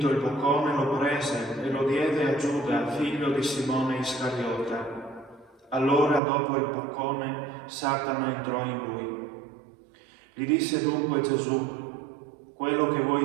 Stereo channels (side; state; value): left; drops out; at 6.2 s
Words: il boccone lo prese e lo diede a Giuda, figlio di Simone Iscariota. Allora, dopo il boccone, Satana entrò in lui. Gli disse dunque Gesù: quello che